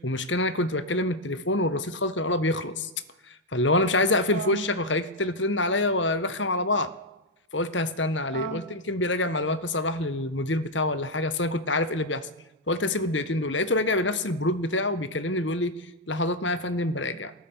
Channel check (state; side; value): normal; both; correlation 0.01